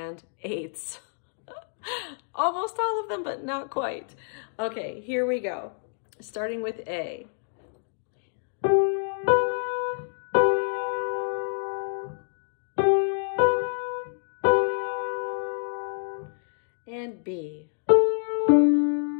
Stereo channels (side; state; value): right; silent; digital silence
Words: eighths. Almost all of them, but not quite. Okay, here we go. Starting with A. And B.